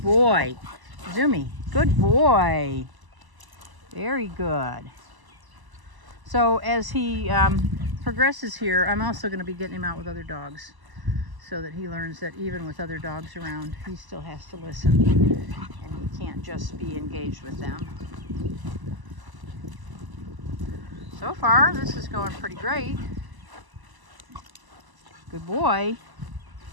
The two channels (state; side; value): late; left; 1.0 ms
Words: boy. Zumi, good boy. Very good. So as he progresses here, I'm also going to be getting him out with other dogs so that he learns that even with other dogs around, he still has to listen and he can't just be engaged with them. So far, this is going pretty great. Good boy.